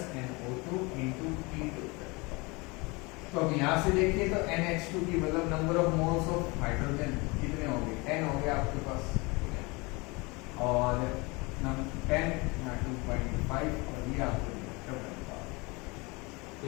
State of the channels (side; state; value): right; quieter; 26.2 dB